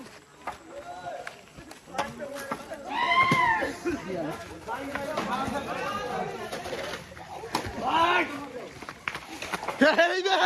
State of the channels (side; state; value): both; identical; correlation 1.00